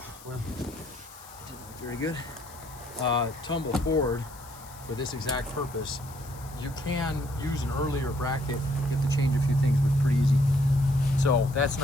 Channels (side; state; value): left; noise; hiss, 20 dB below the sound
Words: Well, it didn't look very good. Tumble forward for this exact purpose. You can use an earlier bracket. You have to change a few things, but it's pretty easy. So that's